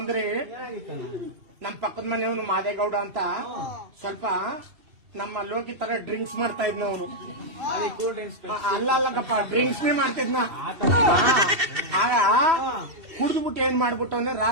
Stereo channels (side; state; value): left; late; 2.7 ms